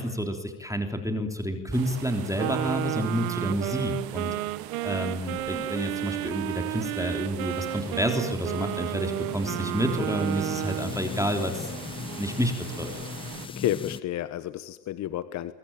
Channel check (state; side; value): normal; both; correlation 0.49